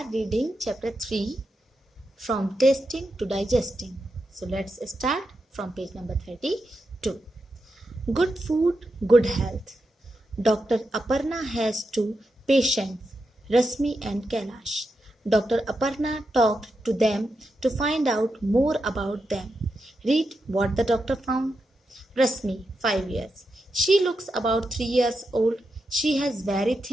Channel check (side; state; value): both; normal; correlation 0.87